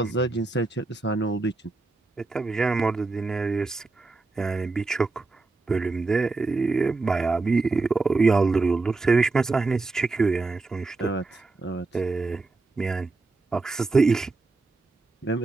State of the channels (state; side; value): quieter; left; 3.6 dB